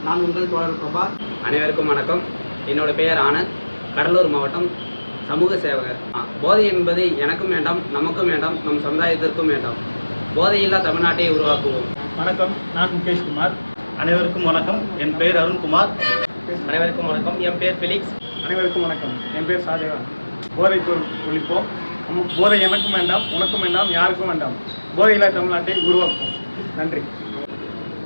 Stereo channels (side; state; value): both; inverted; correlation -1.00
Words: நான் உங்கள் தோழர் பிரபா. அனைவருக்கும் வணக்கம். என்னோட பெயர் ஆனந்த், கடலூர் மாவட்டம், சமூக சேவகர். போதை என்பது எனக்கும் வேண்டாம், நமக்கும் வேண்டாம், நம் சமுதாயத்திற்கும் வேண்டாம். போதையில்லா தமிழ்நாட்டை உருவாக்குவோம். வணக்கம், நான் முகேஷ்குமார். அனைவருக்கும் வணக்கம். என் பெயர் அருண்குமார். அனைவருக்கும் வணக்கம். என் பேர் ஃபிலிக்ஸ். அனைவருக்கும் வணக்கம். என் பேர் ஷாஜகான். போதை பொருள் ஒழிப்போம். போதை எனக்கும் வேண்டாம், உனக்கும் வேண்டாம், யாருக்கும் வேண்டாம். போதையில்லா தமிழ்நாட்டை உருவாக்குவோம். நன்றி.